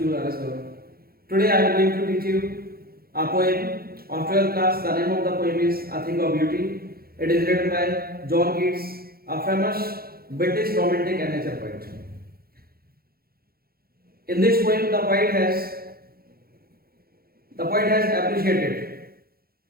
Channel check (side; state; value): left; late; 0.44 ms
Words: RS Gaur. Today I am going to teach you a poem of 12th class. The name of the poem is A Thing of Beauty. It is written by John Keats, a famous British romantic and nature poet. In this poem, the poet has appreciated